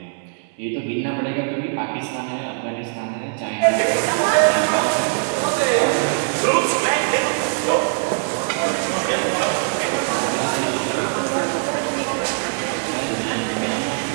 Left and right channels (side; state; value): left; silent; 65 dB below the other